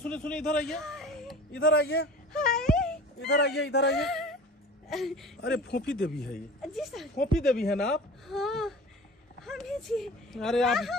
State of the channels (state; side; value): normal; both; correlation 0.39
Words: सुनिए, इधर आइए, इधर आइए, हाय इधर आइए, इधर आइए। अरे फोफी देवी है ये, जी सर। फोफी देवी है ना आप? हाँ हम ही जी। अरे आप